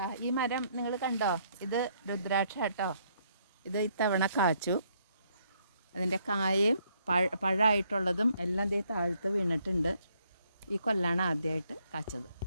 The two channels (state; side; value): inverted; both; correlation -0.70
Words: ഈ മരം നിങ്ങൾ കണ്ടോ? ഇത് രുദ്രാക്ഷ കേട്ടോ. ഇത് ഇത്തവണ കാച്ചു. അതിൻ്റെ കായയും പഴമായിട്ടുള്ളതും എല്ലാം ദേ താഴത്ത് വീണിട്ടുണ്ട്. ഈ കൊല്ലാണ് ആദ്യമായിട്ട് കാച്ചത്.